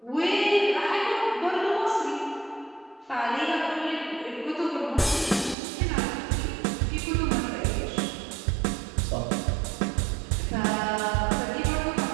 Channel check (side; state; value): left; drops out; at 5.6 s